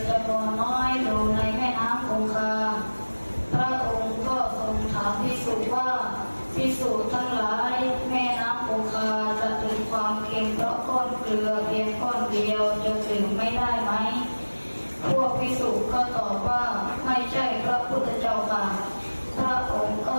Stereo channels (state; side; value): inverted; both; correlation -1.00